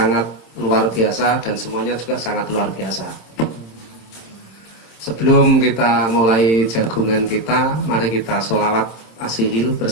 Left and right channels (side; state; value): right; late; 26 ms